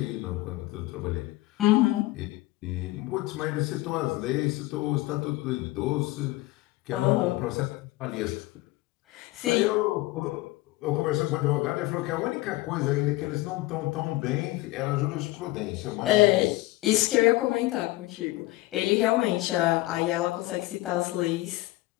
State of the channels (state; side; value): quieter; right; 19.2 dB